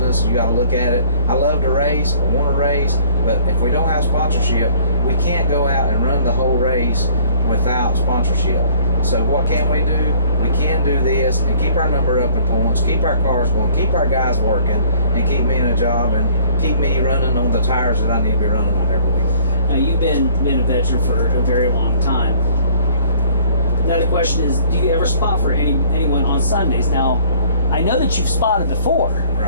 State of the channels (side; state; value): both; inverted; correlation -0.56